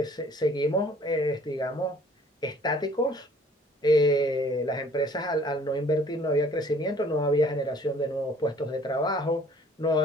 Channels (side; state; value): both; normal; correlation 0.55